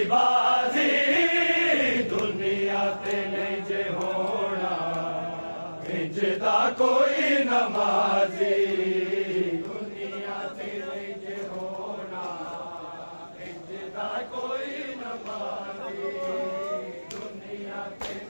दुनिया ते नहीं जे होना इंजदा कोई नमाजी दुनिया ते नहीं जे होना इंजदा कोई नमाजी दुनिया ते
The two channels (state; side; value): inverted; both; correlation -1.00